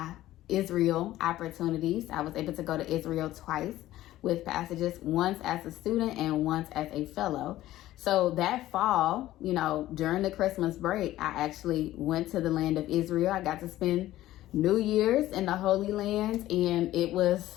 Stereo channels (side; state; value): right; quieter; 14.8 dB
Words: Israel opportunities. I was able to go to Israel twice with Passages, once as a student and once as a fellow. So that fall, during the Christmas break, I actually went to the land of Israel. I got to spend New Year's in the Holy Land, and it